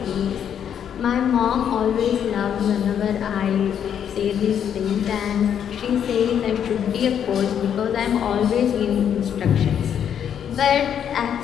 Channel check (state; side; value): quieter; right; 8.8 dB